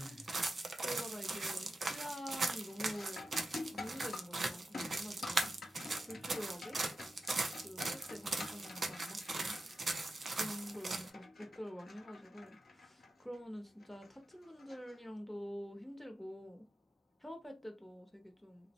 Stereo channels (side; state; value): both; normal; correlation 0.91